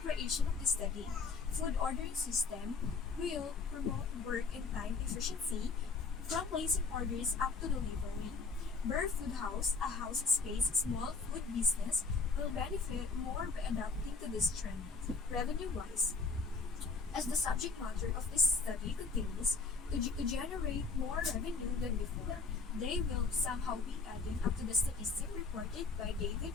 creation of the study. Food ordering system will promote work and time efficiency from placing orders up to delivery. Burp Foodhouse, a house space small food business, will benefit more by adapting to this trend. Revenue-wise, as the subject matter of this study continues to generate more revenue than before, they will somehow be added up to the statistic reported by David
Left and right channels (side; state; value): right; quieter; 4.4 dB